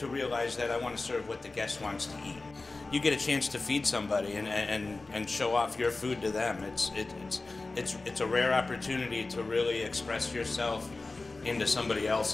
realize that I want to serve what the guest wants to eat. You get a chance to feed somebody and show off your food to them. It's a rare opportunity to really express yourself into somebody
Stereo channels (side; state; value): right; quieter; 3.4 dB